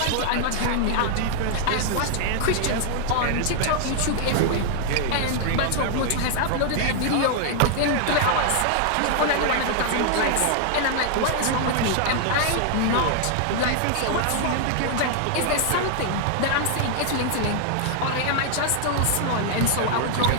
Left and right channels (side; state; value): both; different; correlation 0.00